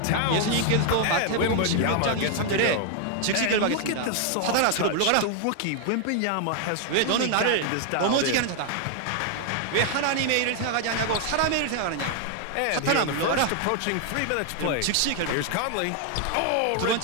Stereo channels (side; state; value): both; different; correlation 0.00